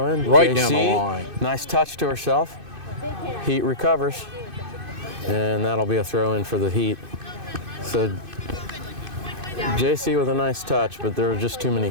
in. Right JC, nice touch to herself. Heat recovers. And that'll be a throw in for the Heat. So JC with a nice touch, but there were just too many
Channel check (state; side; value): late; left; 2.5 ms